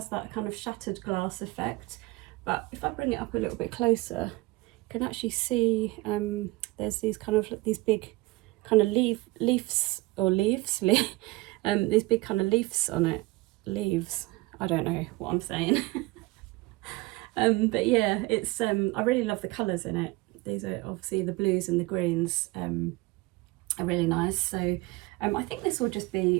that kind of shattered glass effect. But if I bring it up a little bit closer, you can actually see there's these kind of these big kind of leaves these big kind of leaves on it. Leaves, I don't know what I'm saying. But yeah, it's I really love the colours in it. These are obviously the blues and the greens are really nice. So I think this will just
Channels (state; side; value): quieter; left; 21.4 dB